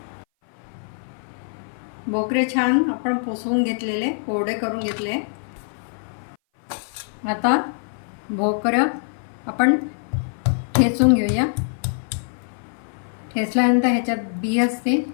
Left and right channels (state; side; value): silent; right; 58 dB below the other